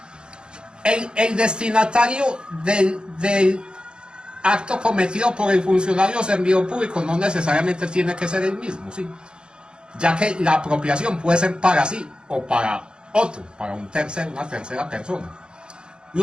el destinatario del acto cometido por el funcionario o servidor público no necesariamente tiene que ser el mismo, ¿sí? Ya que la apropiación puede ser para sí o para otro, para una tercera persona.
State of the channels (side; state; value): left; late; 0.050 ms